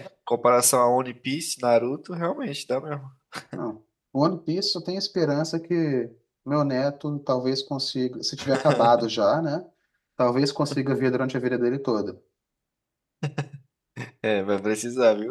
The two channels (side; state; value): both; identical; correlation 1.00